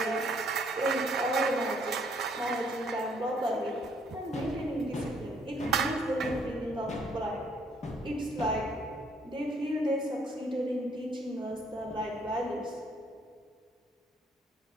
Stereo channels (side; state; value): both; normal; correlation 0.66